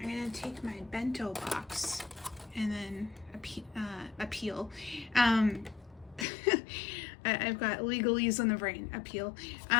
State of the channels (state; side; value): drops out; right; at 6.2 s